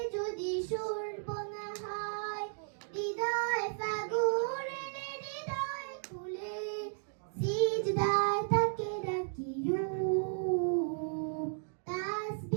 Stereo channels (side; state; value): left; silent; digital silence